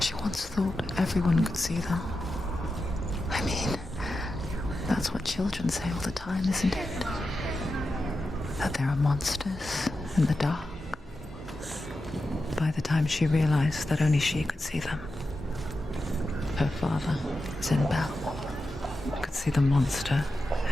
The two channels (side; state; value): both; normal; correlation 0.90